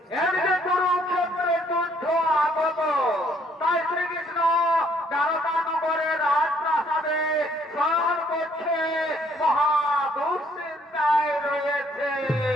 এদিকে কুরুক্ষেত্রের যুদ্ধ আগত। তাই শ্রীকৃষ্ণ দ্বারকানগরের রাজপ্রাসাদে শয়ন করছে, মহা দুশ্চিন্তায় রয়েছে।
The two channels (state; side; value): normal; both; correlation 0.65